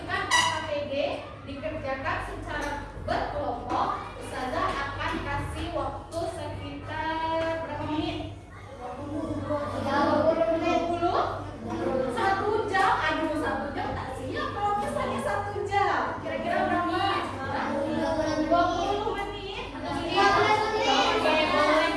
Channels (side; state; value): both; identical; correlation 1.00